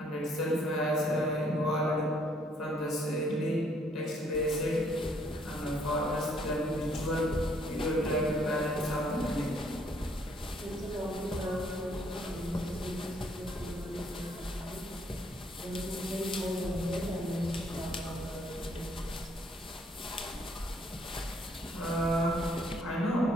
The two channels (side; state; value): both; normal; correlation 0.66